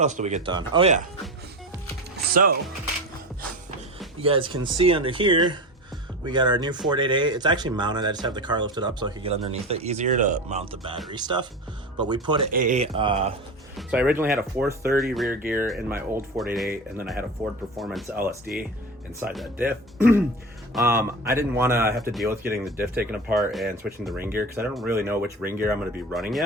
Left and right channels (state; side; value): normal; both; correlation 0.27